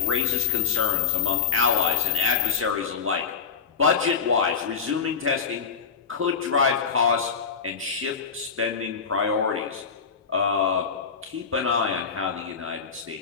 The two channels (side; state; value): right; quieter; 6.1 dB